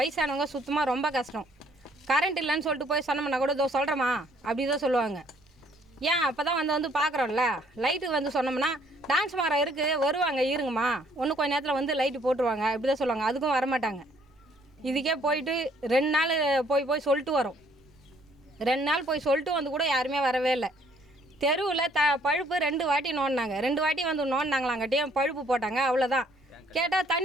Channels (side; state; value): both; normal; correlation 0.63